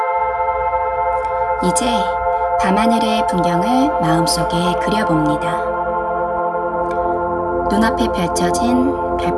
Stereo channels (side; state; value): both; identical; correlation 1.00